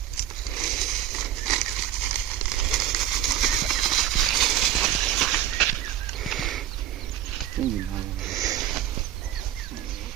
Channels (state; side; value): quieter; left; 11.7 dB